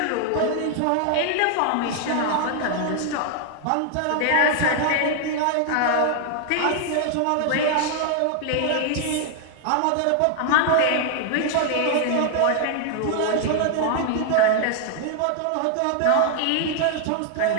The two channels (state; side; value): different; both; correlation 0.00